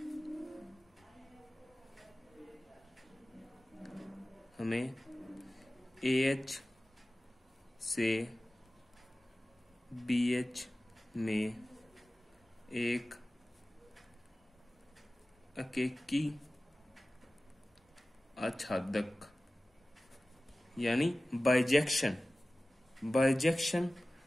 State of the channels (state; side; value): normal; both; correlation 0.97